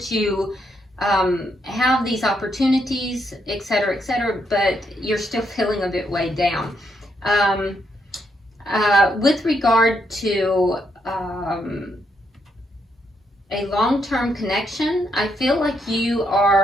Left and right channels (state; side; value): normal; both; correlation 0.77